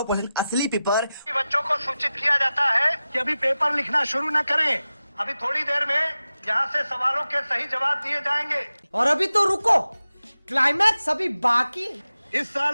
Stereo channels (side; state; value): both; inverted; correlation -0.94